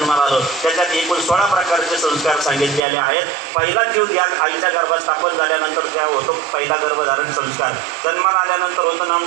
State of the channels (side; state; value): left; drops out; at 2.8 s